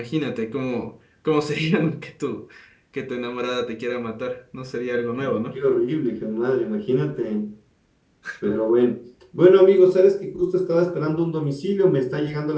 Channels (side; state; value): both; identical; correlation 1.00